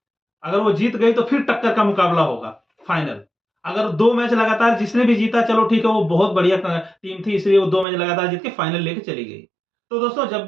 अगर वो जीत गई तो फिर टक्कर का मुकाबला होगा फाइनल। अगर 2 मैच लगातार जिसने भी जीता, चलो ठीक है वो बहुत बढ़िया टीम थी इसलिए वो 2 मैच लगातार जीत के फाइनल लेके चली गई। तो दोस्तों जब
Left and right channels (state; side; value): drops out; left; at 7.9 s